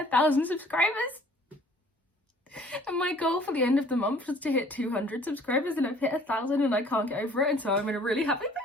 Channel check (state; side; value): normal; both; correlation 0.54